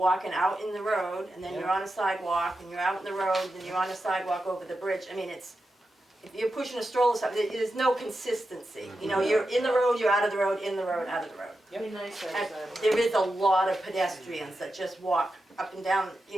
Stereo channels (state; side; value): normal; both; correlation 0.89